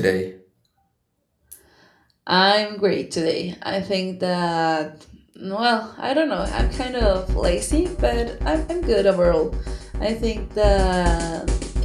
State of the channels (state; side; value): identical; both; correlation 1.00